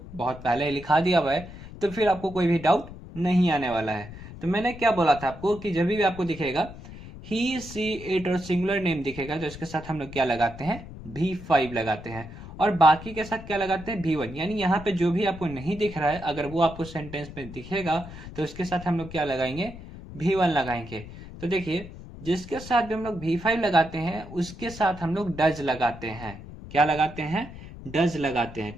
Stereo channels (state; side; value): noise; left; rumble, 14 dB below the sound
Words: बहुत पहले लिखा दिया हुआ है तो फिर आपको कोई भी डाउट नहीं आने वाला है। तो मैंने क्या बोला था आपको कि जब भी आपको दिखेगा ही, सी, इट और सिंगुलर नेम दिखेगा तो इसके साथ हम लोग क्या लगाते हैं? V5 लगाते हैं। और बाकी के साथ क्या लगाते हैं? V1। यानी यहाँ पे जो भी आपको नहीं दिख रहा है अगर वो आपको सेंटेंस में दिखेगा तो इसके साथ हम लोग क्या लगाएंगे? V1 लगाएंगे। तो देखिए जिसके साथ भी हम लोग V5 लगाते हैं उसके साथ हम लोग डज लगाते हैं। क्या लगाते हैं? डज लगाते हैं।